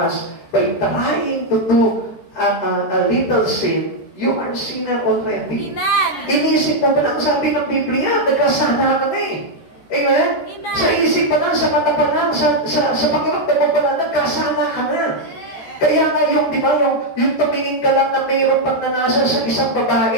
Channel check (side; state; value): right; late; 13 ms